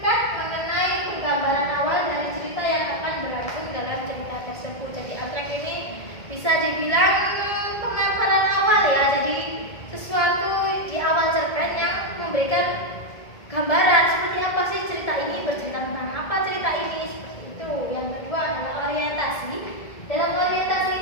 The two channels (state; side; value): late; right; 1.7 ms